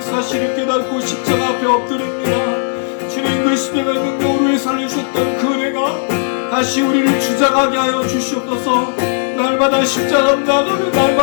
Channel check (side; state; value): right; silent; digital silence